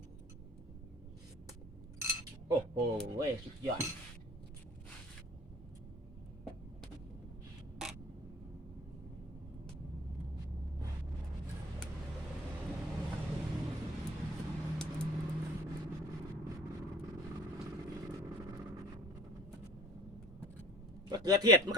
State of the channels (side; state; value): both; normal; correlation 0.47